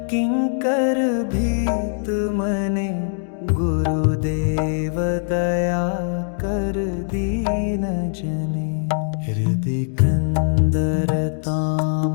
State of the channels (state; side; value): silent; right; digital silence